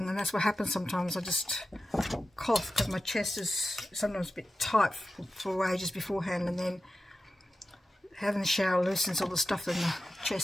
and that's what happens sometimes. I just cough because my chest is sometimes a bit tight for ages beforehand, and then having the shower loosens all the stuff in the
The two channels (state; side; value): normal; both; correlation 0.92